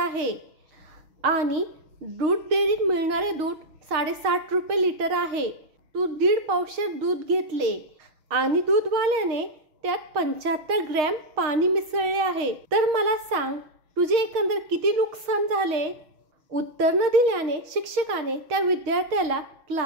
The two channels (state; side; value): late; left; 6.5 ms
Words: आणि दूध डेअरीत मिळणारे दूध 60.5 रुपये लिटर आहे. तू 1.5 पावशेर दूध घेतले आणि दूधवाल्याने त्यात 75 ग्रॅम पाणी मिसळले आहे, तर मला सांग तुझे एकंदर किती नुकसान झाले? उत्तर न दिल्याने शिक्षकाने त्या विद्यार्थ्याला